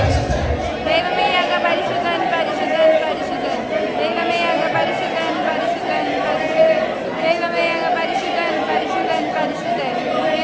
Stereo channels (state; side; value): identical; both; correlation 1.00